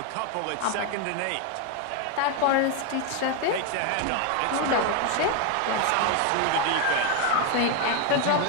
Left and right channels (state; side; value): different; both; correlation 0.02